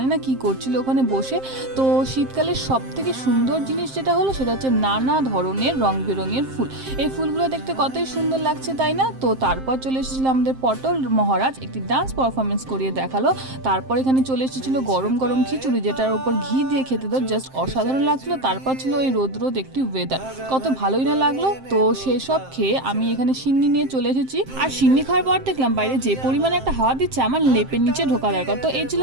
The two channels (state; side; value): late; left; 7.6 ms